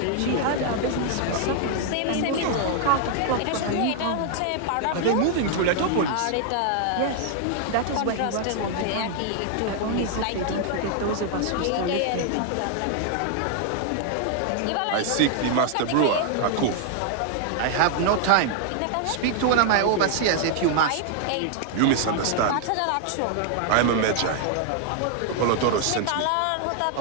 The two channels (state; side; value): different; both; correlation 0.00